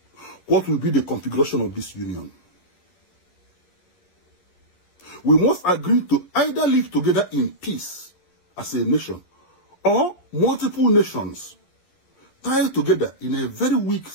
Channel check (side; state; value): right; late; 11 ms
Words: What will be the configuration of this union? We must agree to either live together in peace as a nation, or multiple nations tied together in a very weak